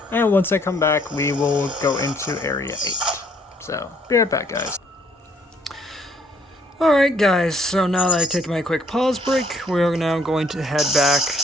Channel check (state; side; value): normal; both; correlation 0.64